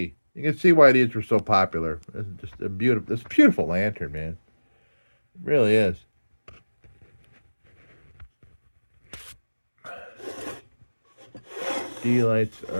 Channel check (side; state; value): both; inverted; correlation -1.00